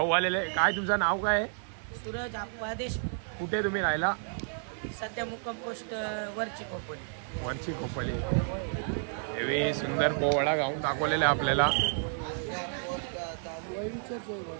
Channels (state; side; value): silent; left; 57 dB below the other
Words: आलेले काय तुमचं नाव काय आहे? सूरज आदेश. कुठे तुम्ही राहिला? सध्या मुक्काम पोस्ट वरची खोपोली. हेवी सुंदर पोवाडा गाऊन दाखवलेला आपल्याला.